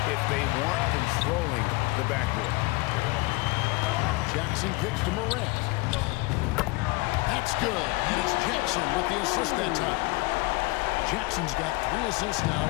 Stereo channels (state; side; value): quieter; right; 23.4 dB